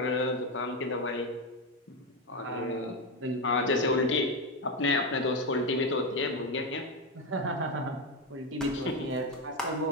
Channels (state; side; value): normal; both; correlation 0.11